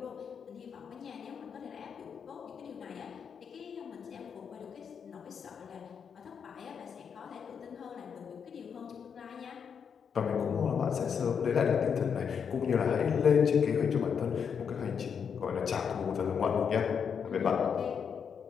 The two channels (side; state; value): right; quieter; 6.9 dB